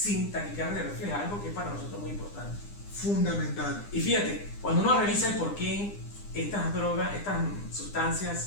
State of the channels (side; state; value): right; late; 9.9 ms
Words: taquicardia refleja, algo que es para nosotros muy importante. Fundamental. Y fíjate, cuando uno revisa el por qué estas drogas, estas